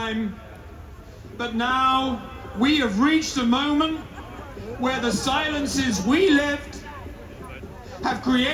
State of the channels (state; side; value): identical; both; correlation 1.00